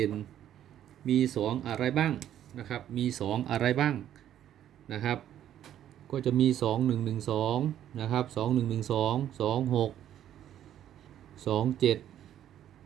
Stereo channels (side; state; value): left; quieter; 11.1 dB